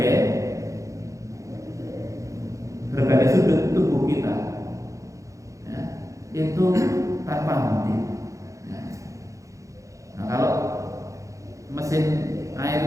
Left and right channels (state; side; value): late; left; 0.15 ms